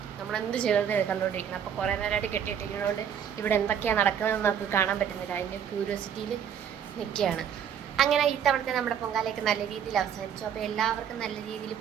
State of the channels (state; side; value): quieter; left; 8.5 dB